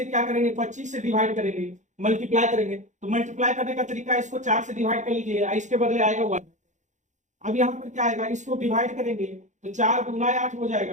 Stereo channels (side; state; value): left; late; 0.35 ms